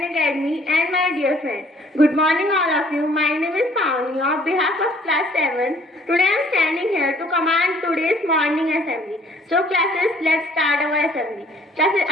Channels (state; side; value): normal; both; correlation 0.58